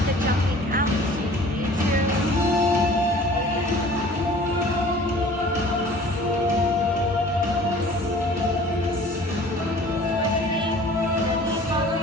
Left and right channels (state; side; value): normal; both; correlation 0.47